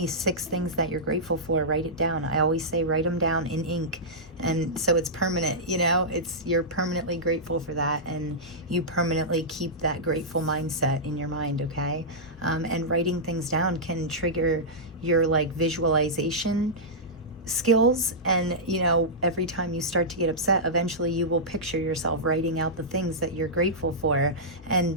6 things that you're grateful for. Write it down. I always say write them down in ink, and so it's permanent. You know, you're permanently grateful for that, and you permanently keep that grateful mindset in your mind. Okay, and writing things down can trigger your like visualization skills, and you know, every time you start to get upset, eventually you will picture yourself writing out the things that you're grateful for, and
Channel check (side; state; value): both; normal; correlation -0.12